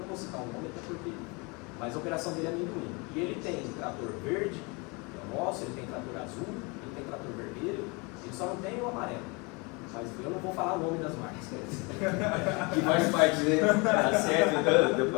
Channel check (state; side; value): quieter; right; 28.9 dB